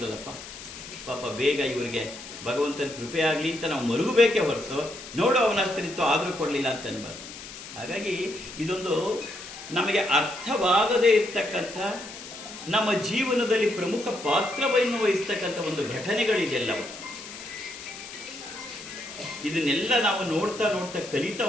ಪಾಪ ಬೇಗ ಇವ್ರಿಗೆ ಭಗವಂತನ ಕೃಪೆ ಆಗಲಿ ಅಂತ ನಾವು ಮರುಗಬೇಕೇ ಹೊರತು ನೋಡು ಅವನ ಅಷ್ಟರಿತ್ತು ಆದರೂ ಕೊಡಲಿಲ್ಲ ಅಂತ ಅನ್ಬಾರ್ದು. ಹಾಗಾಗಿ ಇದೊಂದು ನಮಗೆ ಅರ್ಥವಾಗದೇ ಇರ್ತಕ್ಕಂಥ, ನಮ್ಮ ಜೀವನದಲ್ಲಿ ಪ್ರಮುಖ ಪಾತ್ರವನ್ನು ವಹಿಸ್ತಕ್ಕಂಥ ಒಂದು ಘಟನೆಗಳಿದೆಲ್ಲವೂ. ಇದನ್ನೆಲ್ಲ ನಾವು ನೋಡ್ತಾ ನೋಡ್ತಾ ಕಲಿತಾ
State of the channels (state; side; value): noise; left; hiss, 13 dB below the sound